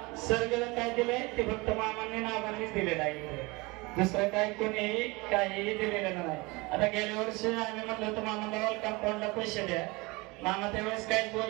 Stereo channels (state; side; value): quieter; left; 24.8 dB